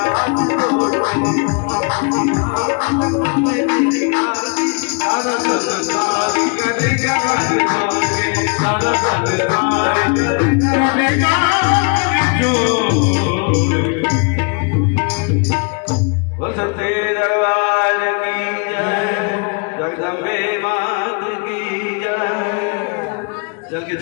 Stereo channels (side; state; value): right; quieter; 36.4 dB